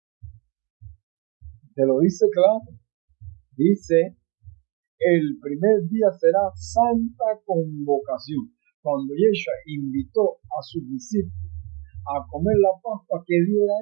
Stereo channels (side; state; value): left; quieter; 29.7 dB